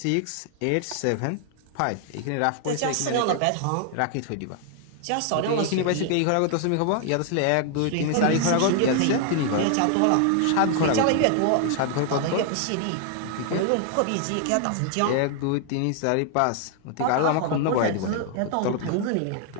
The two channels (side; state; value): both; different; correlation 0.00